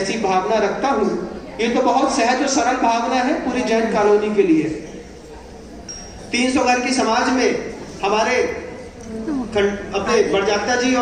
भावना रखता हूं। ये तो बहुत सहज और सरल भावना है पूरी जैन कॉलोनी के लिए। 300 घर की समाज में हमारे अपने बड़जात्या जी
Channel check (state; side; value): identical; both; correlation 1.00